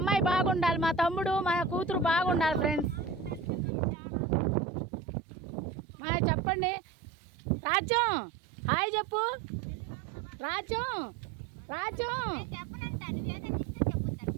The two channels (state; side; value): drops out; left; at 3.7 s